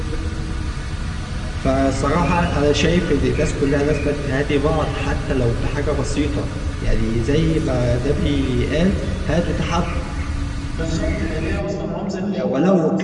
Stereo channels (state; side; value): identical; both; correlation 1.00